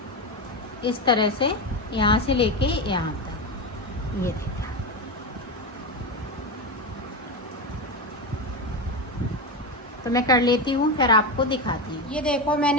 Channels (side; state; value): both; normal; correlation 0.16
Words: इस तरह से यहाँ से लेके यहाँ तक। ये देखें, तो मैं कर लेती हूँ फिर आपको दिखाती हूँ। ये देखो